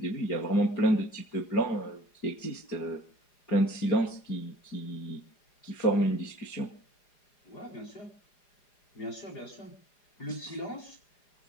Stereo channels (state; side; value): late; right; 4.9 ms